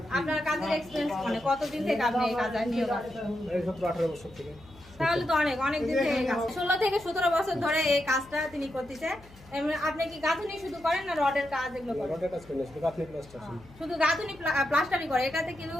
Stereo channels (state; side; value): noise; left; hum, 22 dB below the sound